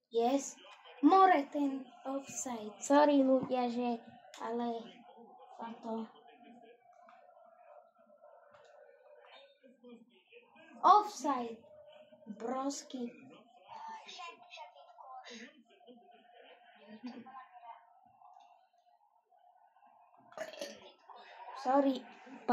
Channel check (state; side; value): identical; both; correlation 1.00